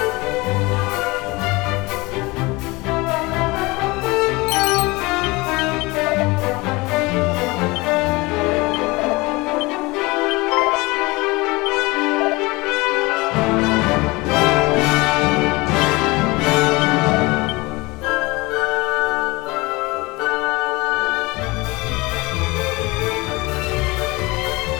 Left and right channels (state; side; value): quieter; right; 23.5 dB